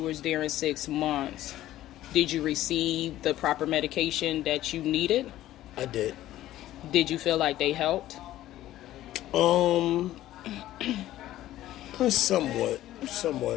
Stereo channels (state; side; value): quieter; right; 14.2 dB